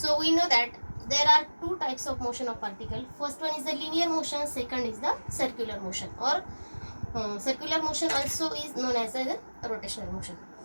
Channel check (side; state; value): both; inverted; correlation -1.00